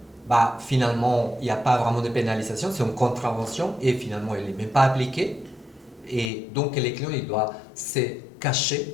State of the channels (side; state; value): right; drops out; at 6.3 s